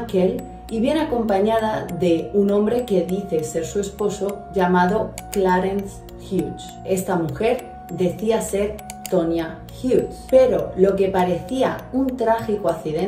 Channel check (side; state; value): both; identical; correlation 1.00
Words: y viene acompañada de un hombre que dice ser su esposo llamado Clarence Hughes. Esta mujer decía ser Tonya Hughes, pero lo que parecía un trágico